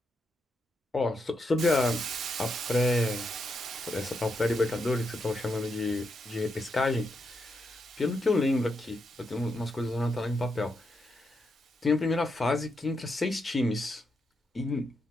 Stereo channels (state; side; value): normal; both; correlation 0.82